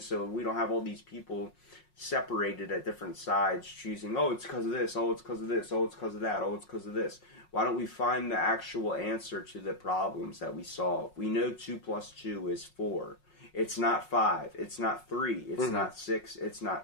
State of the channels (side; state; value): right; late; 5.5 ms